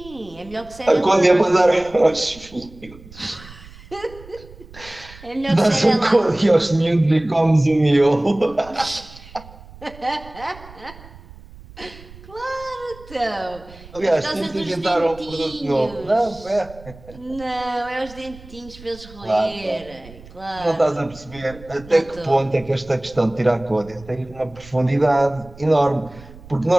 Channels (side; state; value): right; noise; rumble, 20 dB below the sound